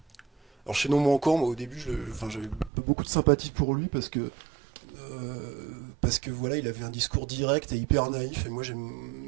Alors Chaînon Manquant, moi au début, j'avais beaucoup de sympathie pour lui parce que voilà, il avait un discours direct et hyper naïf. Et moi j'aime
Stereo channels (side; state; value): left; drops out; at 2.7 s